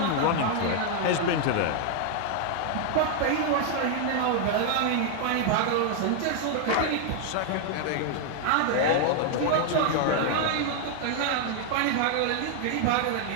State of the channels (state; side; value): different; both; correlation 0.00